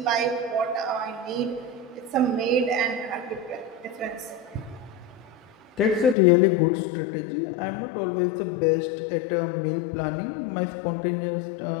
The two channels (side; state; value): right; drops out; at 6.2 s